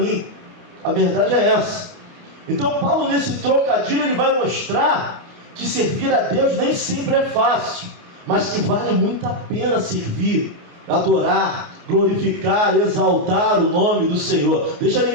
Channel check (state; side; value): late; left; 29 ms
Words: A verdade é essa. Então Paulo, nesse trocadilho, ele vai mostrar que servir a Deus nem sempre é fácil, mas que vale muito a pena servir, adorar, glorificar, exaltar o nome do Senhor. Deixa